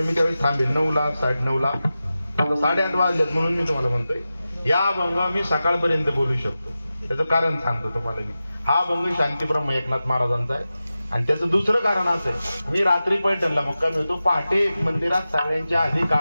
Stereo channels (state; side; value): inverted; both; correlation -0.94